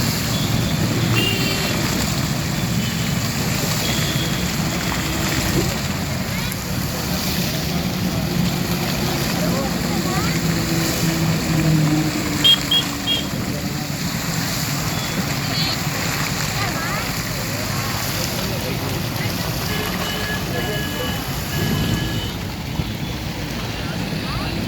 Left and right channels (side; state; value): both; identical; correlation 1.00